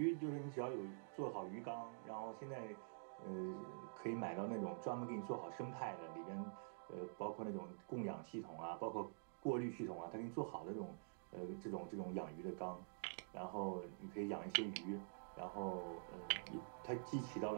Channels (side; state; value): left; silent; digital silence